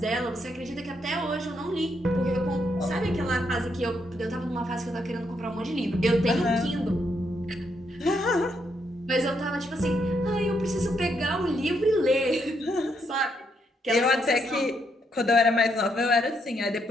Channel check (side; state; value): both; normal; correlation 0.77